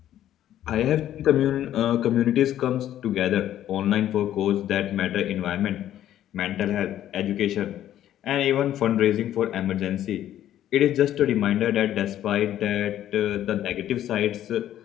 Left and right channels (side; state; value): right; quieter; 11.9 dB